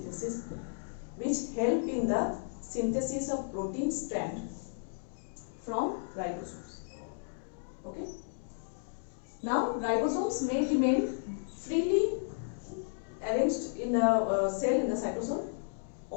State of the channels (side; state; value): right; silent; digital silence